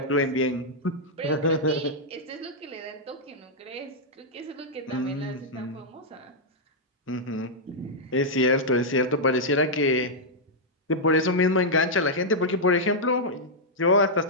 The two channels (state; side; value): normal; both; correlation -0.06